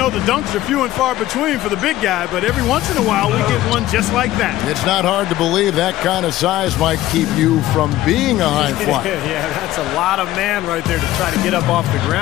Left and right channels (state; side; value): quieter; right; 15.2 dB